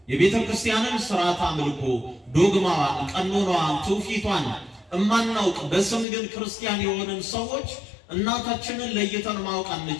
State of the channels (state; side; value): drops out; right; at 6.1 s